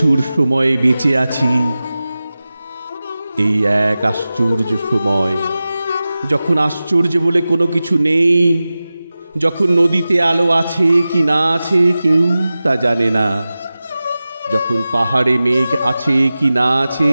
সময়ে বেঁচে আছি। এই এক আশ্চর্য সময়, যখন আশ্চর্য বলে কোনো কিছু নেই, যখন নদীতে আলো আছে কি না আছে কেউ তা জানে না, যখন পাহাড়ে মেঘ আছে কি না আছে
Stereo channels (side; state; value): both; inverted; correlation -0.96